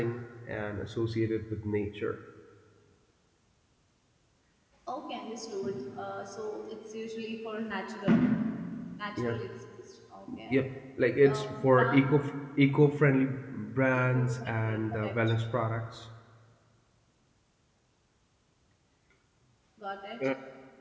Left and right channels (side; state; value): both; identical; correlation 1.00